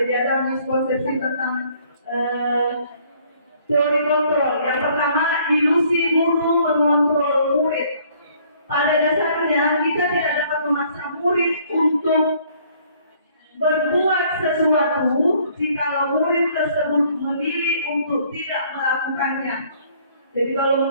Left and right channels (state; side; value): inverted; both; correlation -0.61